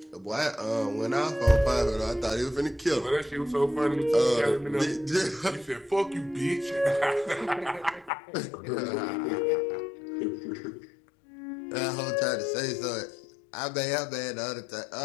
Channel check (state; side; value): drops out; right; at 8.1 s